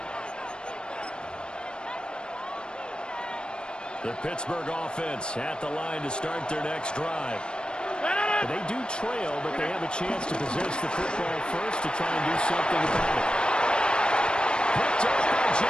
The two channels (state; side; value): late; right; 0.052 ms